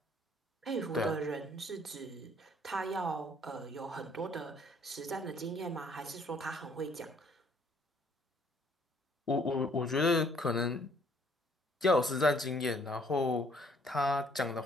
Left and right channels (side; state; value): both; normal; correlation 0.62